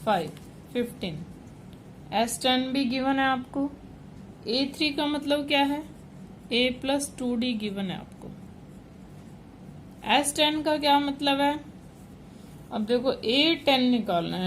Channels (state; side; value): identical; both; correlation 1.00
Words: 15। S10 भी गिवन है आपको। A3 का मतलब क्या है? A प्लस 2D गिवन है आपको। S10 का क्या मतलब है? अब देखो A10 निकालना